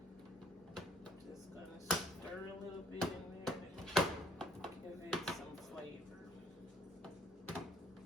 Just gonna stir a little bit in there to give it some flavor.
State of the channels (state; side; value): normal; both; correlation 0.62